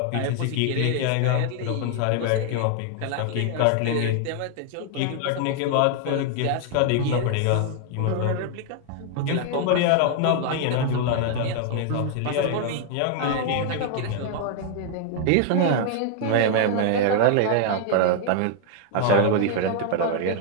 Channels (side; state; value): both; different; correlation 0.00